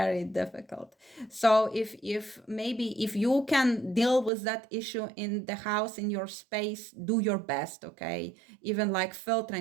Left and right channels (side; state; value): left; drops out; at 4.3 s